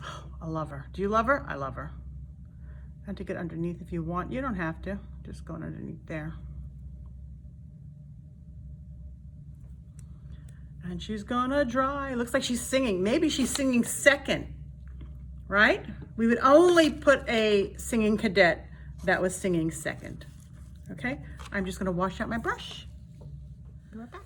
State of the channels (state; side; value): identical; both; correlation 1.00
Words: Oh, I love her. Do you love her? I love her. And to get underneath if you want. You don't have to. Just going underneath there. And she's gonna dry. Looks like she's singing. Maybe she's singing second, right? We would only put a singing cadet that was singing second. Okay, I'm just gonna wash out my brush. Be right back.